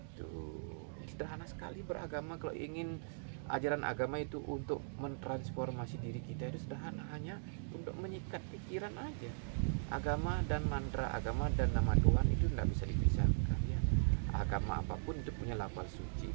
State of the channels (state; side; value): silent; left; digital silence